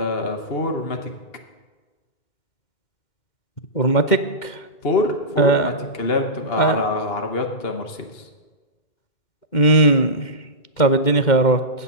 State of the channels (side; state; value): right; late; 2.1 ms